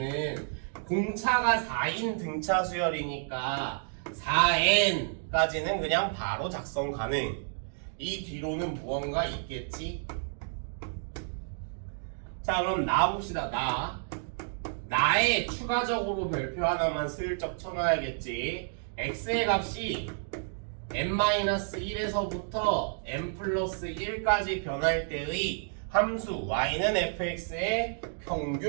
공차가 4인 등차 수열이니까 4n까지는 그냥 바로 작성 가능. 이 뒤로는 무언가 있겠지? 자, 그럼 나 봅시다. 나의 추가적으로 별표 하나만 슬쩍 쳐놔야겠지. x의 값이 n-1에서부터 n 플러스 1까지 변할 때의 함수 y는 fx의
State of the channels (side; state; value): left; silent; digital silence